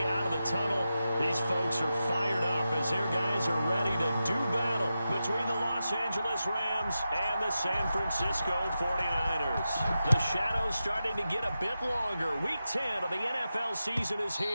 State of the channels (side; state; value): both; inverted; correlation -0.91